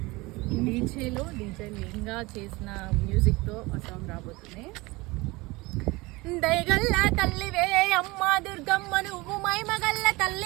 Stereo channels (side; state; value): left; quieter; 22.8 dB